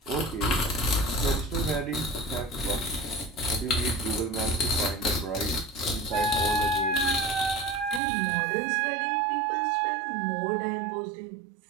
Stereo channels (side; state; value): left; drops out; at 8.0 s